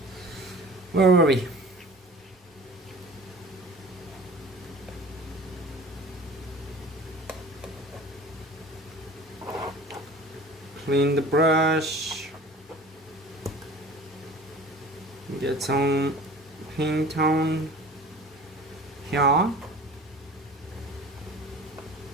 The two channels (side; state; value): both; normal; correlation 0.42